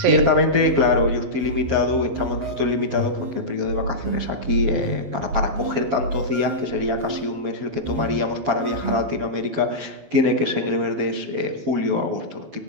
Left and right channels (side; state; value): left; late; 12 ms